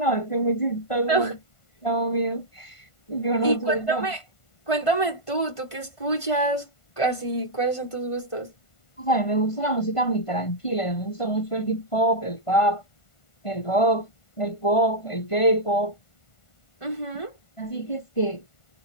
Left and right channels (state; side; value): late; right; 1.5 ms